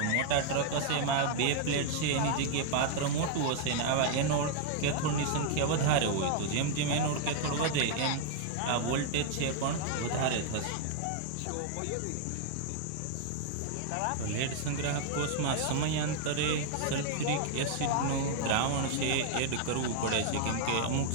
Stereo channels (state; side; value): different; both; correlation 0.00